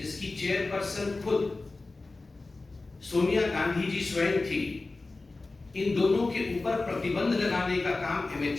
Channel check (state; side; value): quieter; right; 3.4 dB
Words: चेयरपर्सन खुद सोनिया गांधी जी स्वयं थी, इन दोनों के ऊपर प्रतिबंध लगाने का काम